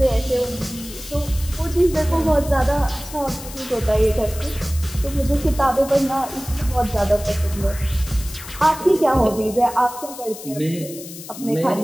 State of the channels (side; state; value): left; noise; hiss, 14 dB below the sound